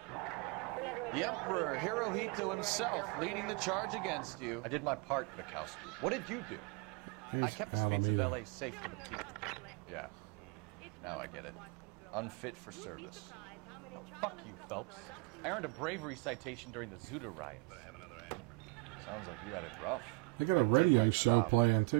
The Emperor Hirohito himself leading the charge against you. I did my part, Bukowski. What did you do? I kept the streets of LA safe for the people. Yeah. Now I get it. Unfit for service. Oh, fuck you, Phelps. I earned a bravery citation during the Zuda riots. Sounds like you had it rough. They got a radio show playing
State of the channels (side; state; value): left; quieter; 27.2 dB